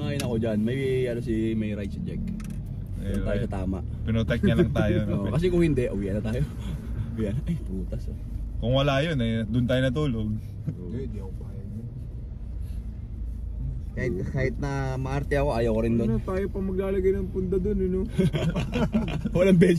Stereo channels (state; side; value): identical; both; correlation 1.00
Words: ako dyan. May ano may right si Jack. Doon tayo sa tama. Pinotek niya lang tayo. No? Oo, kasi kung hindi, uwi na tayo. Uwi na. Ay, putas oh. Kung wala yun, eh, doon tayo natulog. Hindi ako payag. Kahit na maarte ako, ayaw ko rin doon. Ano, tayo pa maglalagay ng punda doon, you know? Walang